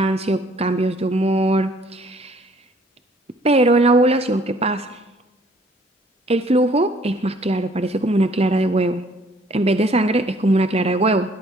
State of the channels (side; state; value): both; normal; correlation 0.60